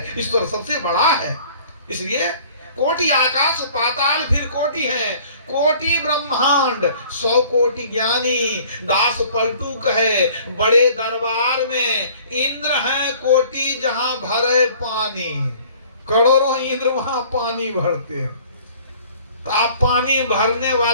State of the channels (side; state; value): both; inverted; correlation -0.52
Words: ईश्वर सबसे बड़ा है। इसलिए कोटि आकाश पाताल फिर कोटि है। कोटि ब्रह्मांड 100 कोटि ज्ञानी, दास पलटू कहे बड़े दरबार में इंद्र है कोटि जहां भरे पानी। करोड़ों इंद्र वहां पानी भरते हैं। तो आप पानी भरने